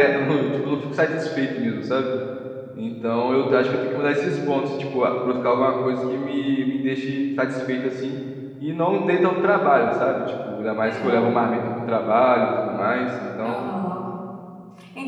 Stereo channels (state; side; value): identical; both; correlation 1.00